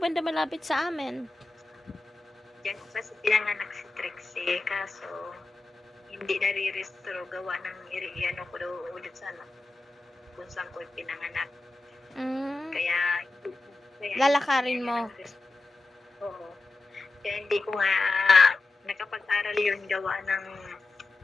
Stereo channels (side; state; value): right; quieter; 3.4 dB